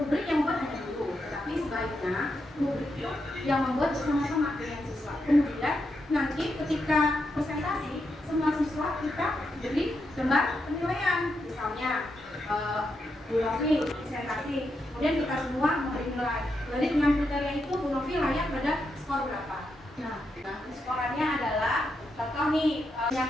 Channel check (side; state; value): both; normal; correlation 0.83